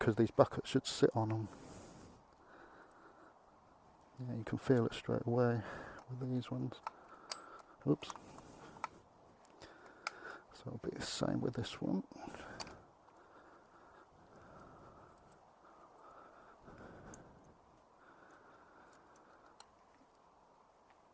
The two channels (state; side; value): identical; both; correlation 1.00